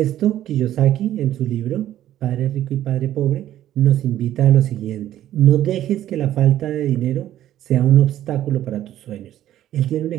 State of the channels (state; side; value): quieter; left; 12.5 dB